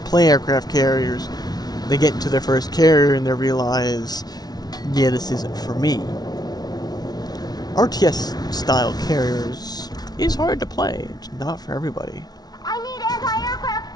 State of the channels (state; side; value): late; right; 0.19 ms